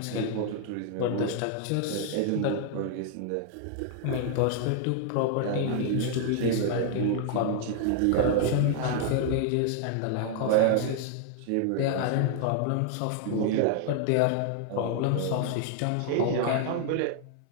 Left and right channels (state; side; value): different; both; correlation 0.00